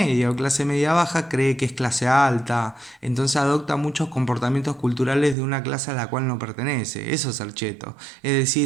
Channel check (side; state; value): left; drops out; at 5.4 s